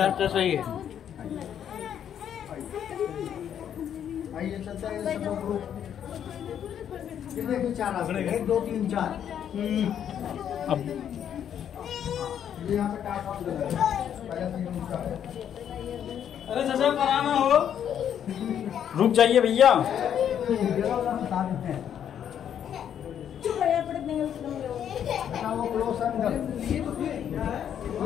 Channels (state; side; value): quieter; right; 9.3 dB